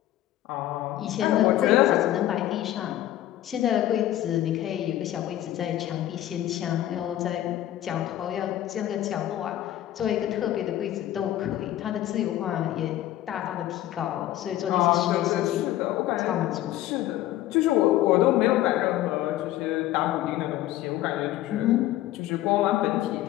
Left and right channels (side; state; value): right; quieter; 13.8 dB